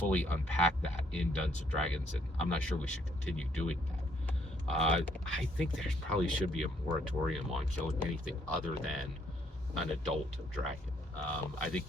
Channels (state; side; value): normal; both; correlation 0.68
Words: unpacked that in Dungeons & Dragons, and I'm not sure we should continue doing that. I think there probably should be a moratorium on killing anything other than an adult dragon. I think